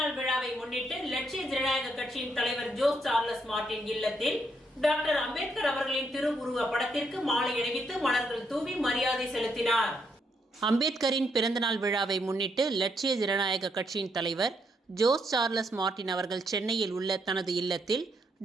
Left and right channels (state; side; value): normal; both; correlation 0.76